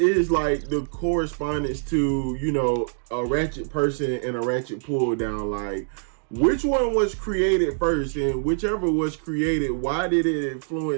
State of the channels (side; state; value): left; silent; digital silence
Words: like the correspondence to a ratchet person and a ratchet pull down? Like, which one was created first, and whichever was created, why did it